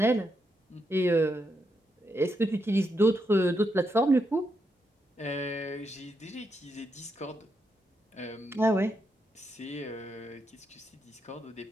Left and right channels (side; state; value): both; normal; correlation 0.82